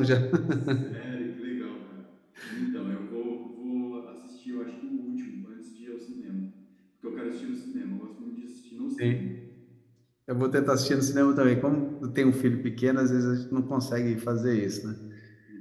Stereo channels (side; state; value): both; identical; correlation 1.00